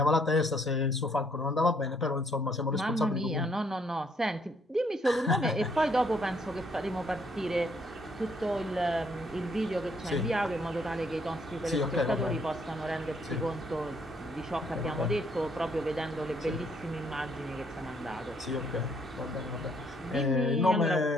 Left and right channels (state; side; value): normal; both; correlation 0.68